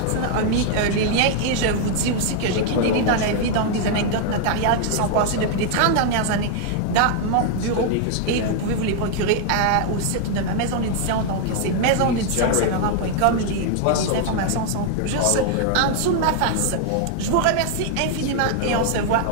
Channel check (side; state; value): both; different; correlation 0.00